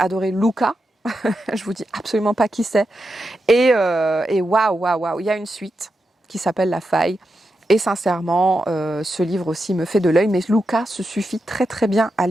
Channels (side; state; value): both; normal; correlation 0.87